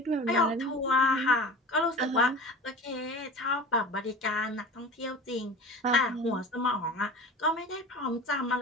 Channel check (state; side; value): normal; both; correlation 0.36